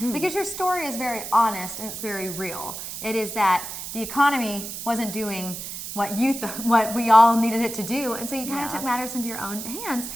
because your story is very honest and it's very real. It is that the economy wasn't doing what we all needed it to do, and so you kind of took matters into your own hands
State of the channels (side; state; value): right; noise; hiss, 8 dB below the sound